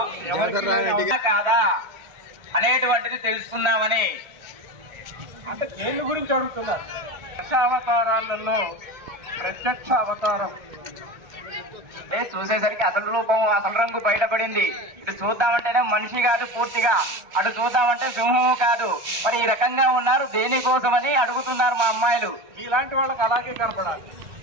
కాదా అనేటువంటిది తెలుసుకుందామని. అంటే దేని గురించి అడుగుతున్నారు? దశావతారాలలో ప్రత్యక్ష అవతారం చూసేసరికి అసలు రూపం అసలు రంగు బయటపడింది. ఇటు చూద్దామంటేనే మనిషి కాదు పూర్తిగా, అటు చూద్దామంటే సింహము కాదు. మరి ఈ రకంగా ఉన్నారు దేనికోసమని అడుగుతున్నారు మా అమ్మాయిలు. ఇలాంటి వాళ్ళకి అలాగే కనపడాలి.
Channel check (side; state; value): left; late; 1.3 ms